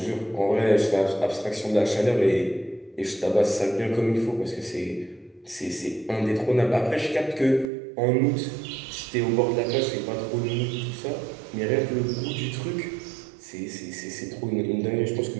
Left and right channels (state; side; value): drops out; left; at 7.7 s